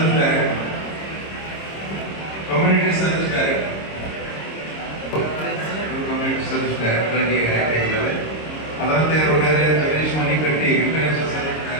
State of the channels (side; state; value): right; late; 26 ms